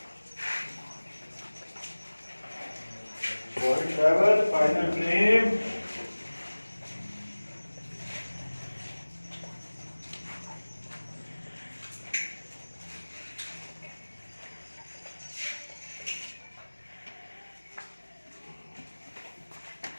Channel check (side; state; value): both; inverted; correlation -1.00